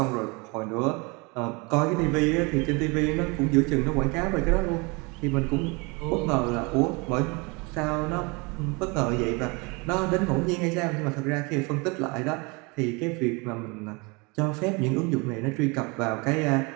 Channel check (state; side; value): quieter; left; 28.3 dB